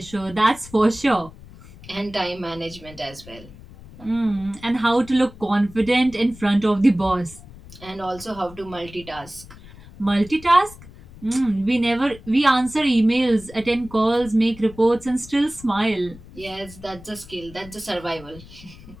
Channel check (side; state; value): left; noise; rumble, 19 dB below the sound